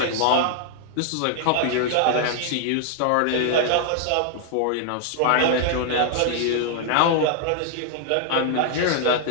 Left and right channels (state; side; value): different; both; correlation -0.01